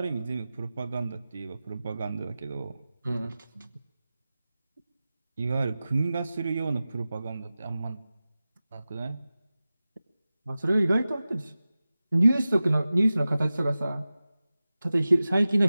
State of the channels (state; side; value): inverted; both; correlation -0.96